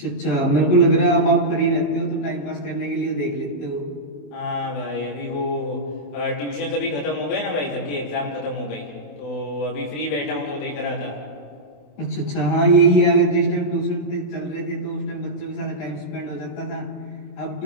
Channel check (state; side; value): late; right; 28 ms